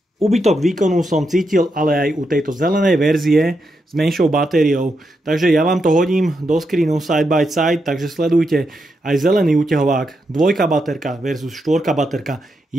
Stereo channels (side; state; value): both; normal; correlation 0.83